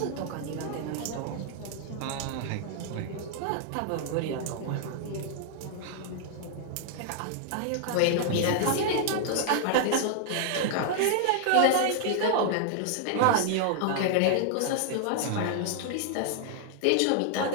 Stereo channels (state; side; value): different; both; correlation -0.01